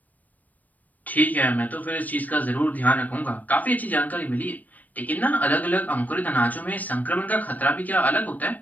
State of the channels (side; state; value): right; late; 0.079 ms